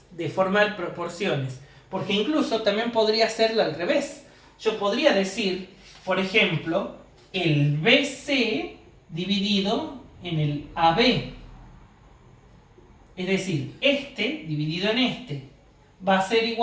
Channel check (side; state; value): both; identical; correlation 1.00